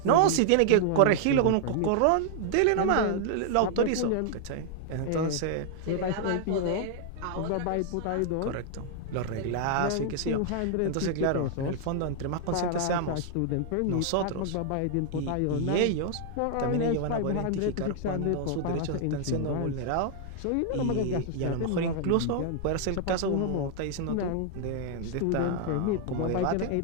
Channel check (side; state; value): both; different; correlation 0.00